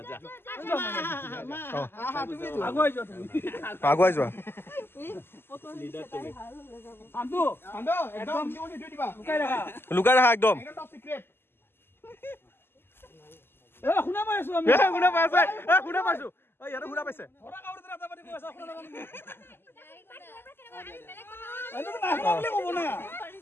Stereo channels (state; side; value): late; right; 0.11 ms